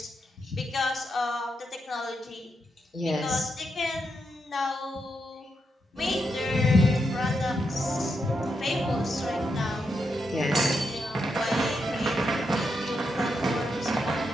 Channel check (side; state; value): both; normal; correlation 0.83